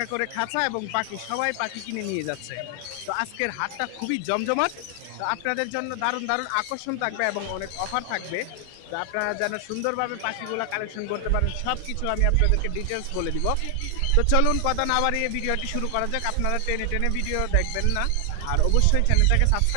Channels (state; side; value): different; both; correlation 0.00